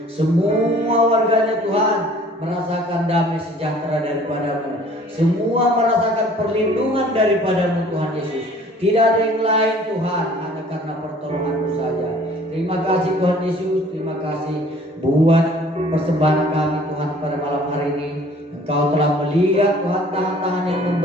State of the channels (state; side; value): normal; both; correlation 0.53